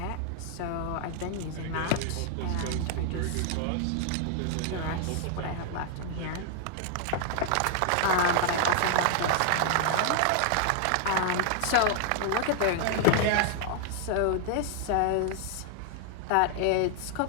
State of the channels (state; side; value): different; both; correlation 0.00